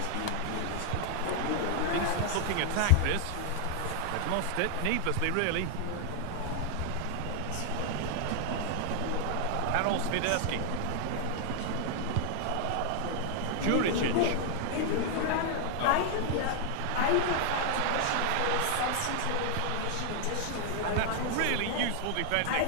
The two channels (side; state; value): both; different; correlation 0.00